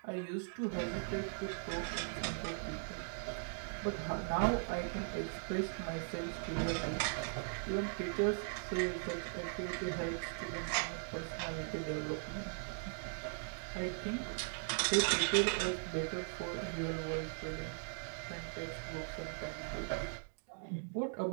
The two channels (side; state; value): left; silent; digital silence